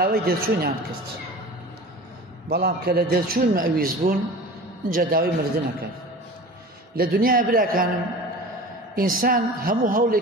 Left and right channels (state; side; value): normal; both; correlation 0.37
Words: دەرچوونیان کرد، بەڵام کە لە دەرچوون مەویز بوون اینجا داوای مردنەکەن. لە دنیای براکانم ئینسان هەموو